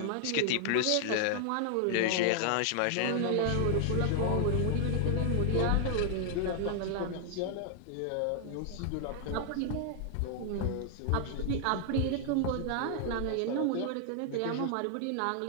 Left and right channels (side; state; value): both; different; correlation 0.00